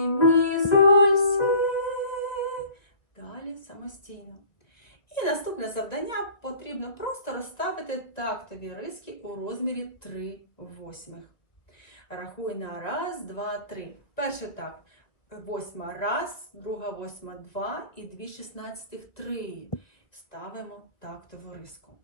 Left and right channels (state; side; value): late; right; 1.9 ms